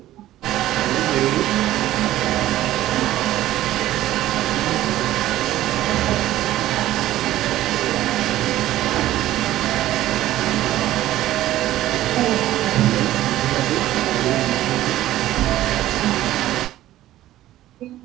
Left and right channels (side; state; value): left; quieter; 14.4 dB